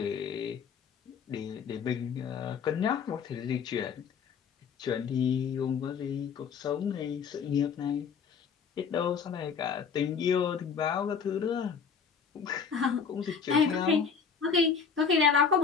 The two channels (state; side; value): quieter; right; 6.2 dB